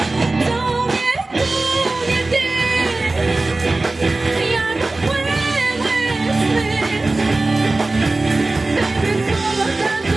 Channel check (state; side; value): quieter; left; 3.1 dB